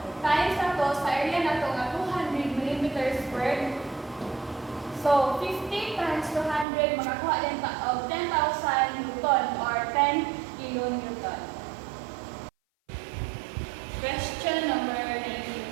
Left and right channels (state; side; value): drops out; left; at 6.7 s